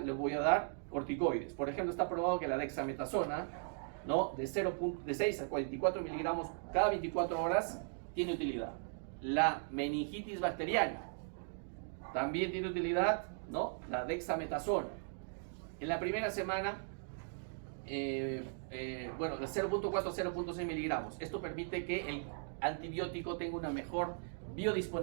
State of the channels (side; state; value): left; silent; digital silence